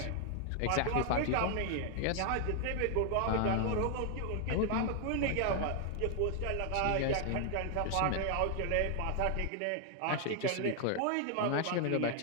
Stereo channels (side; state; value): both; different; correlation 0.00